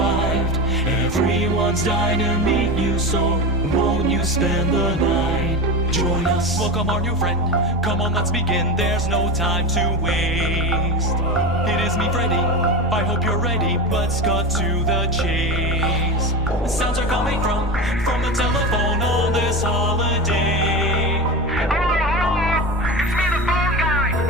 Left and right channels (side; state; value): both; normal; correlation 0.24